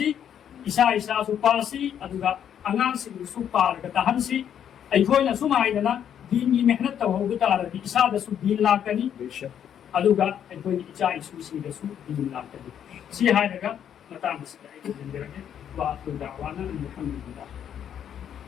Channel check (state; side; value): quieter; right; 9.2 dB